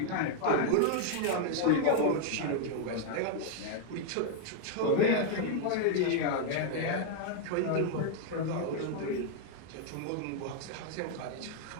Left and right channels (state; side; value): different; both; correlation 0.00